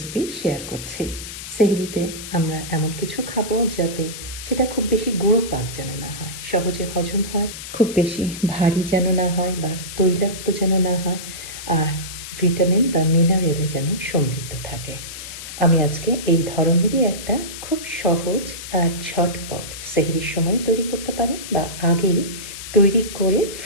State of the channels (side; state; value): left; noise; hiss, 10 dB below the sound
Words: শেয়ার করছি। সেহরিতে আমরা এমন কিছু খাবো যাতে সেটা খুব বেশি গুঁড়ো পাক যেন না হয়, সহজে হজম হয়, খুব বেশি ভারী যেন না হয় বা তৈলাক্ত যেন না হয়, আর ভিটামিন বা মিনারেলে যেন সমৃদ্ধ থাকে। আমি আজকে এই ধরনেরই একটা খুব সহজ আর ঝটপট সেহরির সময় তৈরি করতে পারেন বা আগেই তৈরি করে